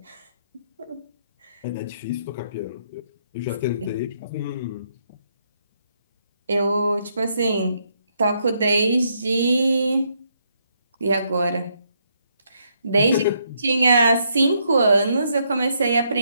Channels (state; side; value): inverted; both; correlation -0.75